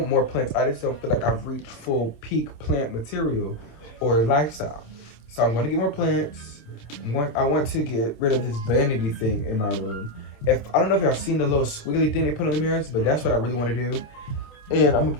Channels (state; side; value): late; right; 27 ms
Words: more plants. I just don't feel like I've reached full peak plant material or lifestyle. So I'm going to get more plants. I want to get rid of this vanity thing in my room. I don't know if y'all seen the little squiggly thing they put on the mirrors, but that's what I really want to do. And I'm going to